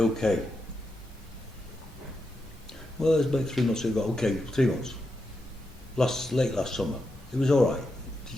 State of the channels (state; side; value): normal; both; correlation 0.86